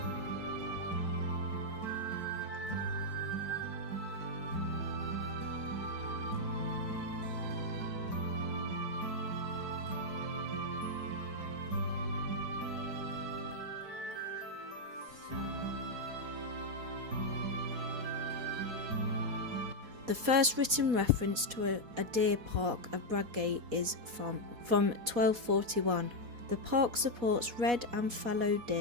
The first written reference to a deer park of Bradgate is from 1241. The park supports red and fallow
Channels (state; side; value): late; left; 4.1 ms